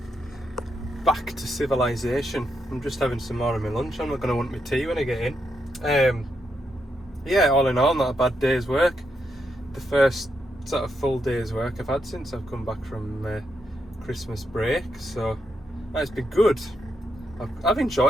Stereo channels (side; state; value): both; normal; correlation 0.82